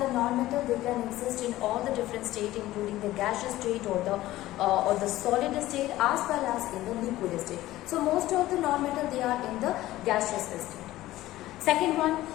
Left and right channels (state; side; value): quieter; right; 16.0 dB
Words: the non-metal they can exist in all the different states including the gaseous state or the solid state as well as in the liquid state. So, most of the non-metal they are in the gaseous state. Second one,